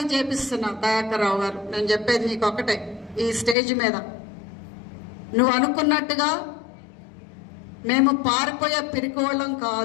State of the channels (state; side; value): drops out; right; at 3.6 s